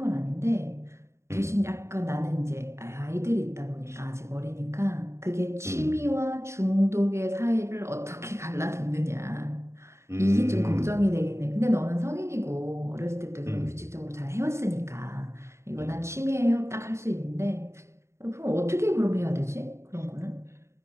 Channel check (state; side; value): late; left; 0.13 ms